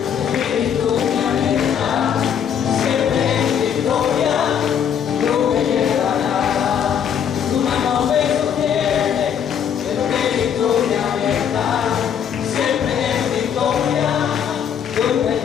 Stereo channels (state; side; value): quieter; right; 8.3 dB